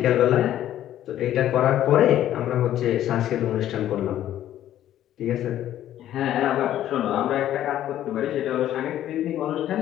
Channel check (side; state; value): right; quieter; 12.1 dB